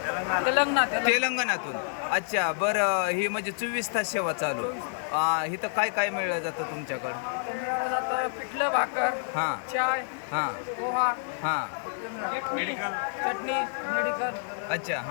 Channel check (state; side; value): silent; right; digital silence